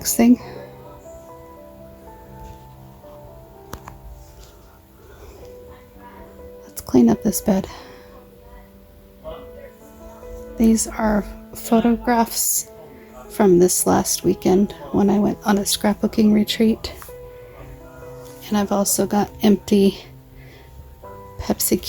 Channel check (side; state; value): both; identical; correlation 1.00